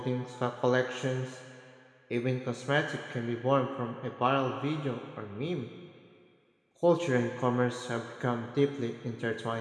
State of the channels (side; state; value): both; identical; correlation 1.00